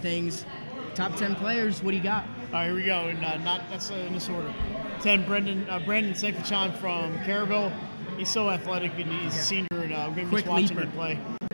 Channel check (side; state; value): both; inverted; correlation -1.00